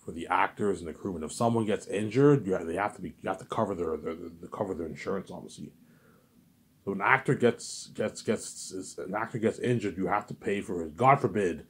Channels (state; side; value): identical; both; correlation 1.00